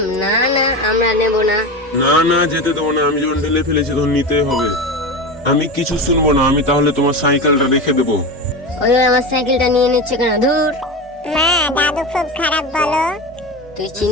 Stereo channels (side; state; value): both; normal; correlation 0.24